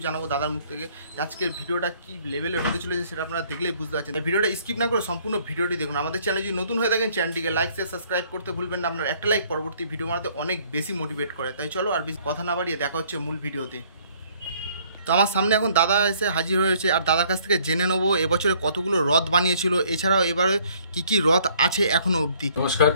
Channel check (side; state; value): both; inverted; correlation -0.61